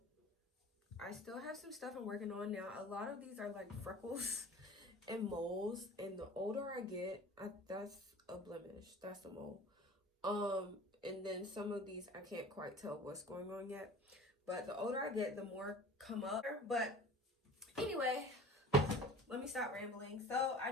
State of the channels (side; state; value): both; normal; correlation 0.42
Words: I still have some stuff I'm working on now. A lot of these are like freckles and moles, and the older I get, that's a blemish, that's a mole. And then some of these I can't quite tell what's going on yet, but the older I get, the more come up. But anyway, let me stop rambling. So I